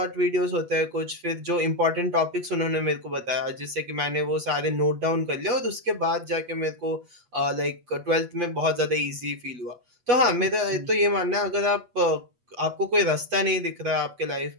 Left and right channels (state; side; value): late; left; 8.2 ms